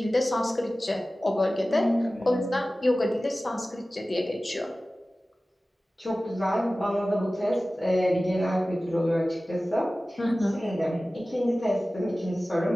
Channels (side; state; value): both; normal; correlation 0.97